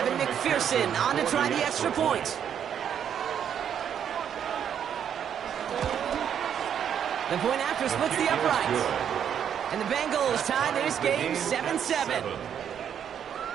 McPherson on to try the extra point. The point after splits the uprights. And the Bengals tie this game 7-7.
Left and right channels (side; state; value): left; quieter; 8.7 dB